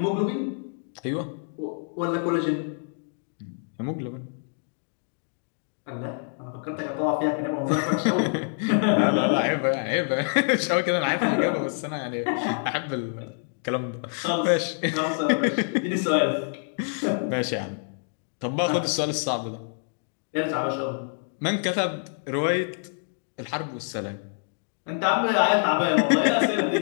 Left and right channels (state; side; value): silent; right; 61 dB below the other